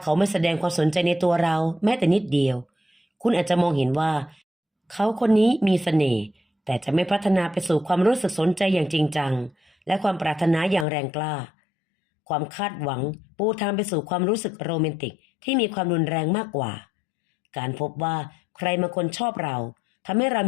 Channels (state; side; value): drops out; right; at 10.9 s